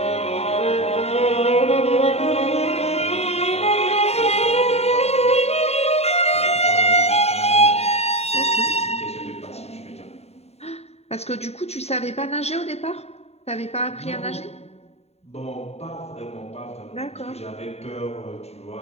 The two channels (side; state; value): right; late; 0.30 ms